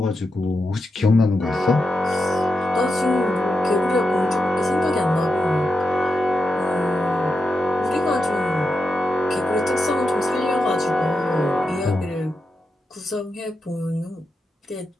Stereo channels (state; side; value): normal; both; correlation 0.87